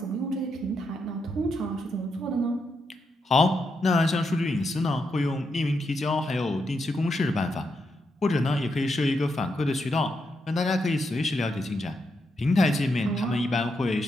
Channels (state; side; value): normal; both; correlation 0.82